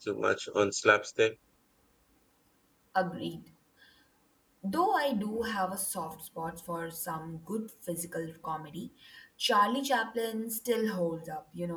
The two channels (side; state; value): both; identical; correlation 1.00